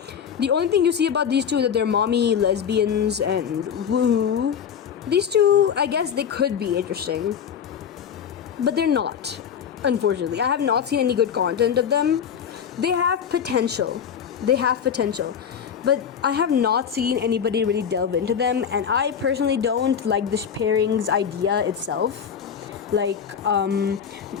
The only thing you see about these two is that they're mommy lesbians and woohoo. These two, I guess they could be interesting, but they're not, unfortunately. I have not seen any good content of them. They have potential, but I have not seen anybody really delve into them, and I personally don't like the pairings idea itself. Like,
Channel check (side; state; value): right; quieter; 7.8 dB